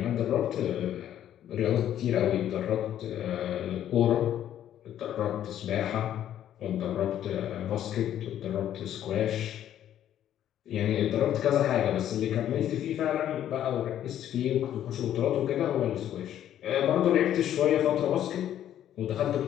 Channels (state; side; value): quieter; right; 11.1 dB